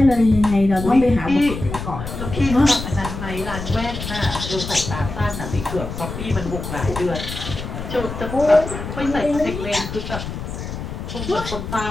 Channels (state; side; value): noise; left; rumble, 7 dB below the sound